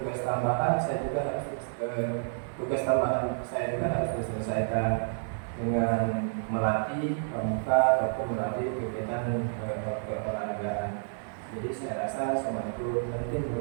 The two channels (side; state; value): left; silent; digital silence